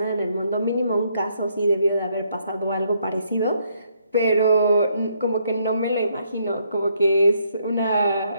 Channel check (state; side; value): inverted; both; correlation -0.72